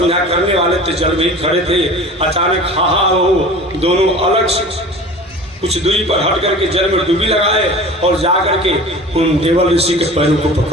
करने वाले थे, जल में ही खड़े थे। अचानक हाहा हो दोनों अलग से कुछ दूरी पर हट करके जल में डुबकी लगाए और जा करके उन देवल ऋषि के पैरों को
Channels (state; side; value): normal; both; correlation 0.39